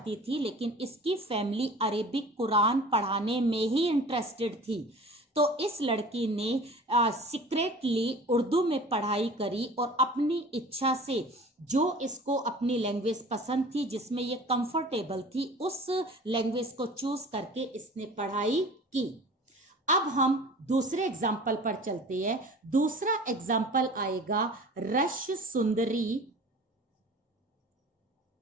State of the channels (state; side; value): normal; both; correlation 0.42